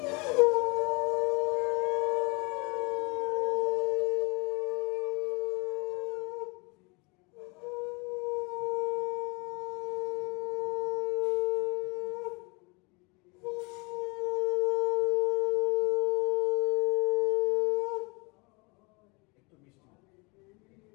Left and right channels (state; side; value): quieter; right; 28.9 dB